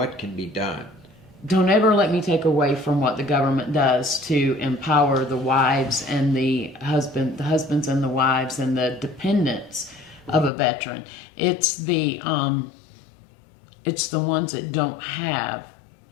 can be done don't ever let me take away from what the government does to empower the wives and the husbands and the wives and the dependents of a veteran. It's the ones that don't have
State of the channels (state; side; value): drops out; right; at 10.5 s